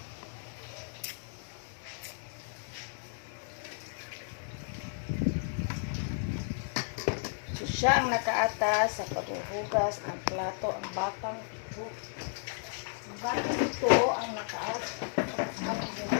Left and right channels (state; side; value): silent; right; digital silence